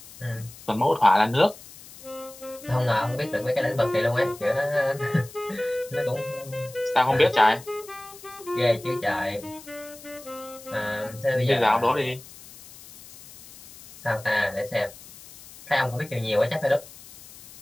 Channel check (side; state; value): left; noise; hiss, 19 dB below the sound